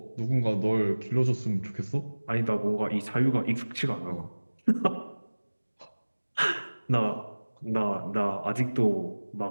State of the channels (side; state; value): both; inverted; correlation -1.00